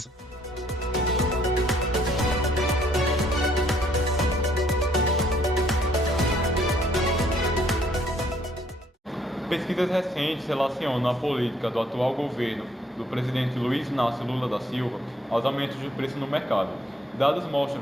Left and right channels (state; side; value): normal; both; correlation 0.66